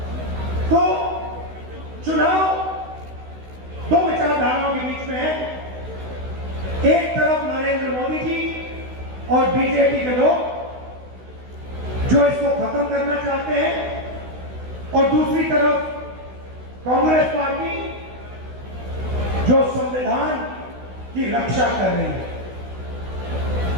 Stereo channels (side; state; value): left; late; 16 ms